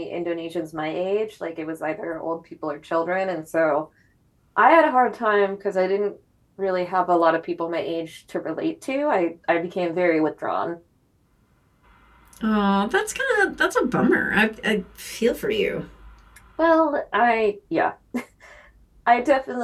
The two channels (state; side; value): identical; both; correlation 1.00